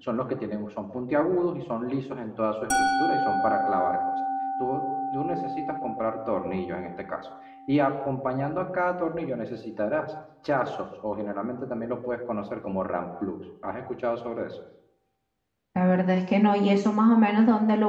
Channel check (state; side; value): identical; both; correlation 1.00